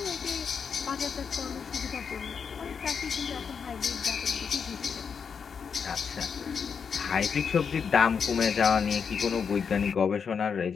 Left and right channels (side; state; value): right; quieter; 6.4 dB